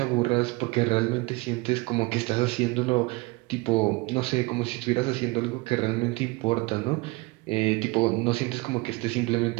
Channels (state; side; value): quieter; left; 23.9 dB